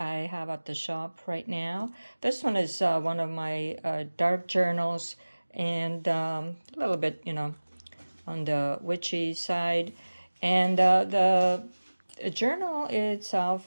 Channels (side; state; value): both; inverted; correlation -1.00